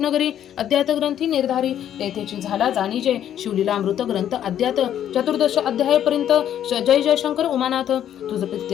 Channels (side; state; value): right; quieter; 10.4 dB